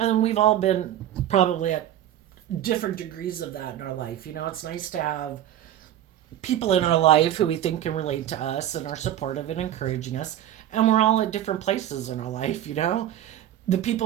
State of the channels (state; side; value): quieter; left; 11.7 dB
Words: then we've all been probably at different degrees of that in our life. It's nice to have people in our life who we think can relate to us and are supportive and encouraging us. And we're all at different places in our life. The